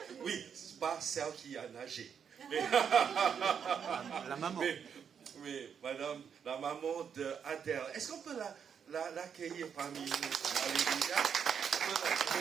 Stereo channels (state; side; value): quieter; left; 7.4 dB